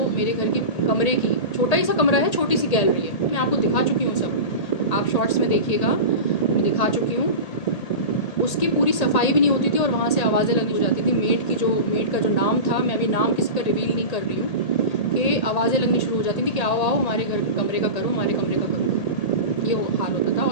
मेरे घर की कमरे की, छोटा ही सा कमरा है, छोटी सी गैलरी है, मैं आपको दिखा चुकी हूँ सब, आप शॉर्ट्स में देखिएगा, मैं दिखा चुकी हूँ। उसकी पूरी सफाई भी नहीं होती थी और वहाँ से आवाज़ें लगनी हो जाती थी। मेड का जो नाम था, मैं अभी नाम किसी का रिवील नहीं कर रही हूँ, कि आवाज़ें लगनी शुरू हो जाती थी कि आओ आओ हमारे घर कमरे का करो, हमारे कमरे का करो, ये हाल होता था।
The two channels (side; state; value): right; late; 1.8 ms